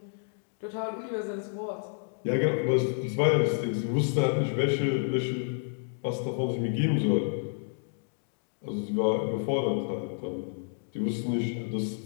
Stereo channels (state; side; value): silent; right; digital silence